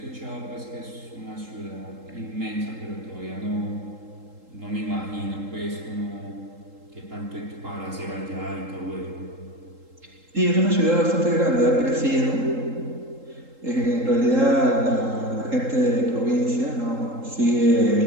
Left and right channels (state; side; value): late; left; 3.8 ms